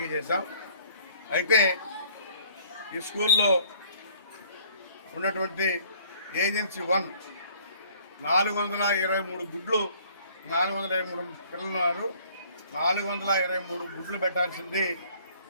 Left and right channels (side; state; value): both; inverted; correlation -0.56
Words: చేశాం. అయితే ఈ స్కూల్లో ఉన్నటువంటి ఏజెన్సీ 1 423 గుడ్లు, 423 పిల్లలు ఉన్నారు. 423 గుడ్లు పెట్టాల్సింది